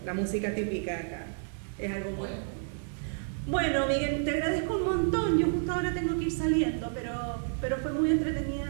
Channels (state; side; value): silent; left; 58 dB below the other